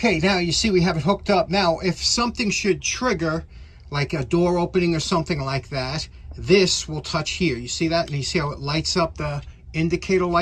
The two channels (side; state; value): both; identical; correlation 1.00